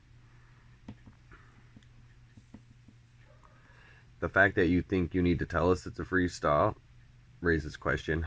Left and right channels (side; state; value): both; identical; correlation 1.00